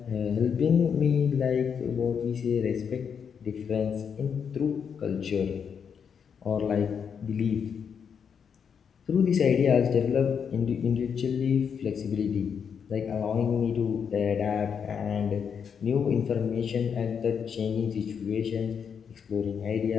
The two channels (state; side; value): quieter; right; 7.0 dB